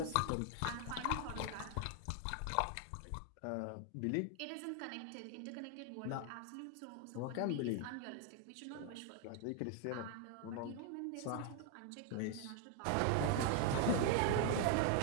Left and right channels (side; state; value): both; different; correlation 0.00